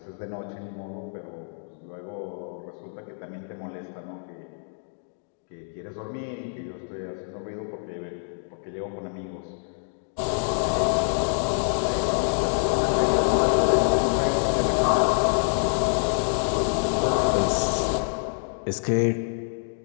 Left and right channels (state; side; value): silent; right; digital silence